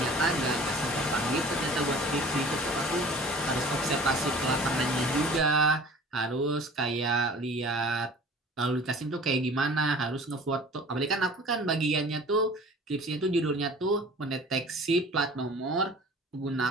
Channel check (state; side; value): normal; both; correlation 0.45